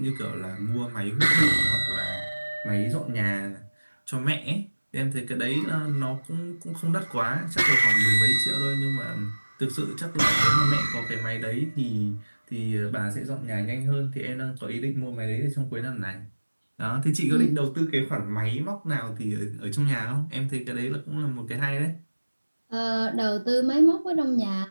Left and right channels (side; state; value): both; inverted; correlation -1.00